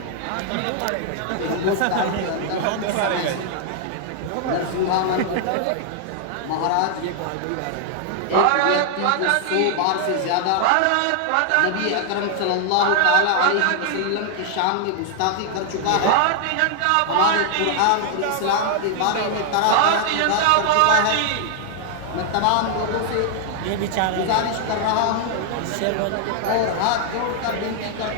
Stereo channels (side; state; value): both; different; correlation 0.00